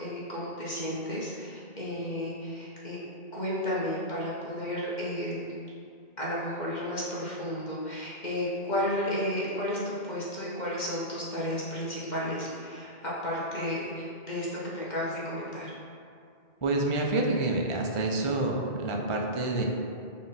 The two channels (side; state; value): right; late; 2.1 ms